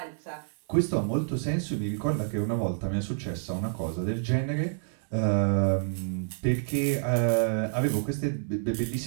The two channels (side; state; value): left; silent; digital silence